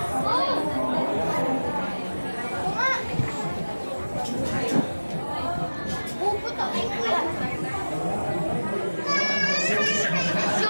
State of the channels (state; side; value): inverted; both; correlation -1.00